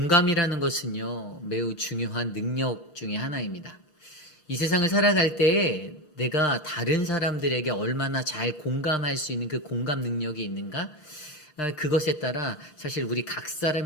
것은요, 매우 중요한 능력 중에 하나입니다. 이 세상을 살아갈 때 내가 다른 사람들에게 얼마나 잘 공감할 수 있는 그 공감 능력이 있는가? 그것에 따라 사실 우리 각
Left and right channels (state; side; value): late; right; 6.5 ms